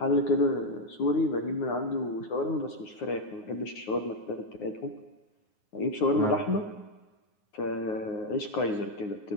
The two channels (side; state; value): right; late; 9.5 ms